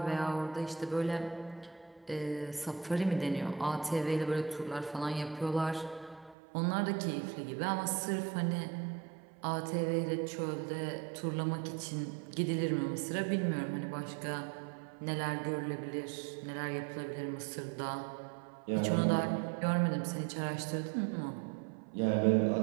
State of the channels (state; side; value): drops out; left; at 6.4 s